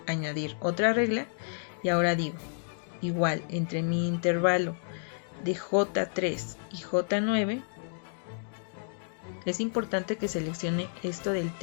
añadir otra regla y ahora digo, igual entre mi intervalo de J3 y J9, es importante que seleccione esto del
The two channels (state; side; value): silent; right; digital silence